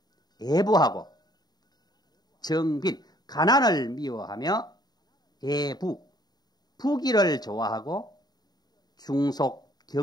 애부하고 정빈 가난을 미워하며 애부 부귀를 좋아하고 중속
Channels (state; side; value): late; right; 0.20 ms